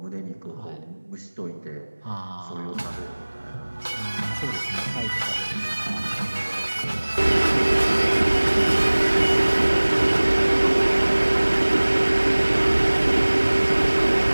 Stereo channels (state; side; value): inverted; both; correlation -1.00